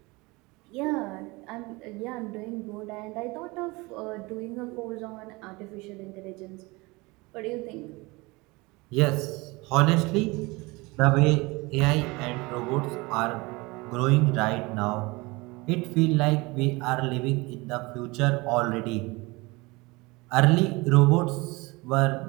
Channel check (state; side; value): quieter; left; 24.1 dB